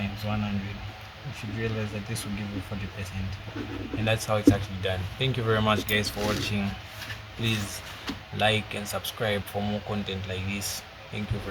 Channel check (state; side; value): identical; both; correlation 1.00